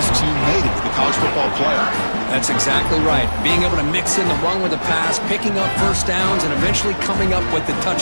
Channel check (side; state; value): both; inverted; correlation -1.00